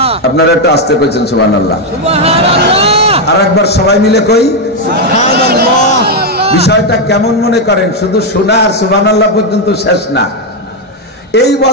আপনারা একটু আস্তে কইছেন সুবহানাল্লাহ। সুবহানাল্লাহ। আর একবার সবাই মিলে কই সুবহানাল্লাহ। বিষয়টা কেমন মনে করেন? শুধু শোনা আর সুবহানাল্লাহ পর্যন্ত শেষ না। এই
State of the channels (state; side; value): normal; both; correlation 0.03